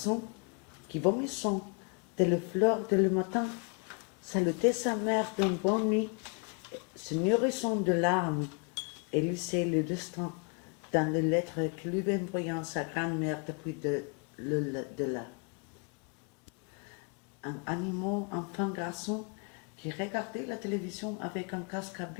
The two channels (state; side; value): quieter; right; 37.6 dB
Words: qui vomissant dès le fleur de le matin, salutait sa mère d'une bonne nuit, se nourrissant de larmes, et lisait le destin dans les lettres que lui envoyait sa grand-mère depuis de là. Un animal enfant garçon qui regardait la télévision avec un casque